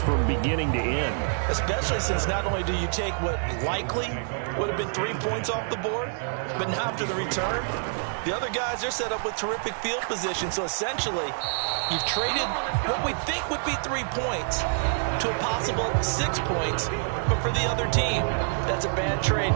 beginning to end. Especially since not only do you take what likely would have been 3 points off the board, but now after the return, the other guys are set up with terrific field position. So essentially, you've traded what we think would be 3 points to a possible 6 points, but for the other team. That's a bad trade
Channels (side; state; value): left; silent; digital silence